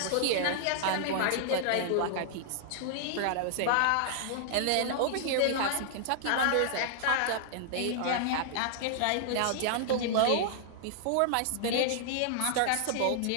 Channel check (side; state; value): both; different; correlation -0.01